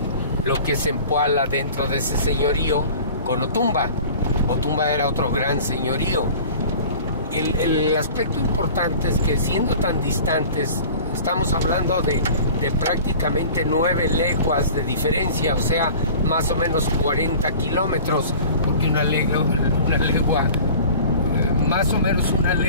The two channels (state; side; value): inverted; both; correlation -0.42